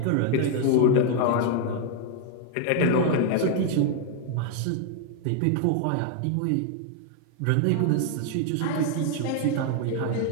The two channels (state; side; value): different; both; correlation 0.00